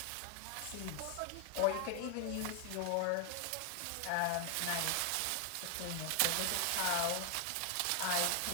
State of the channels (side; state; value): both; different; correlation 0.00